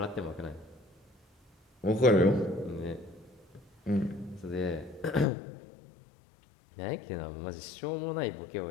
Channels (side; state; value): right; drops out; at 5.2 s